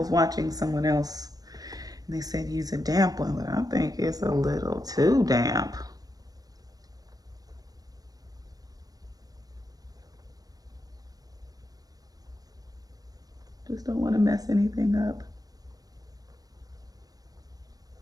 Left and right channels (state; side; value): late; left; 0.18 ms